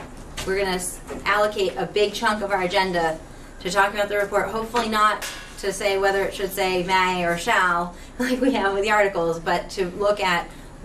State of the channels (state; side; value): identical; both; correlation 1.00